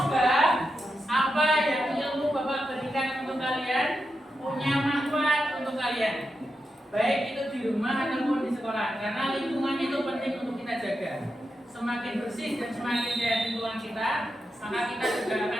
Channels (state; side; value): normal; both; correlation 0.87